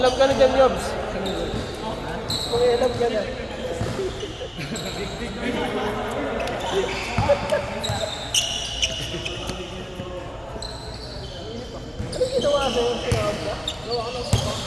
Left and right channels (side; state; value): both; identical; correlation 1.00